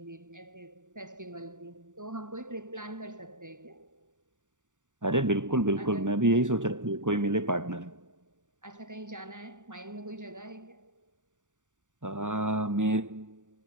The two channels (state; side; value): late; left; 0.86 ms